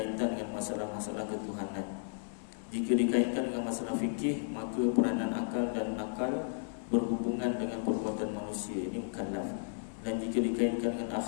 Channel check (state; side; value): silent; right; digital silence